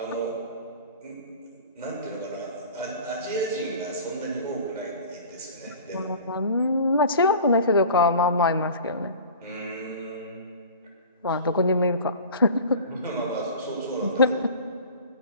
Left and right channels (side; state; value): both; inverted; correlation -0.40